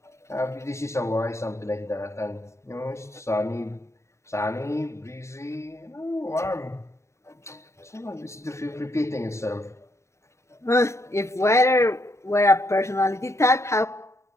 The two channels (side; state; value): right; late; 0.14 ms